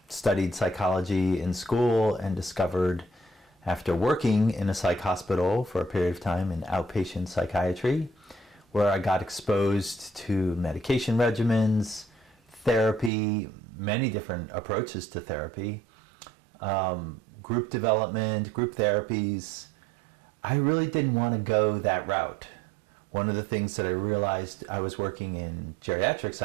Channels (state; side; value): drops out; left; at 13.1 s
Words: studied psychology in school and discovered after working in a psych hospital for a period of time in outpatient psychiatry, where I got exposed to medication regimens, therapy, many different approaches to therapy, group development, group therapies. I really didn't want to go that route. One of the things that I realized, I was working in geriatric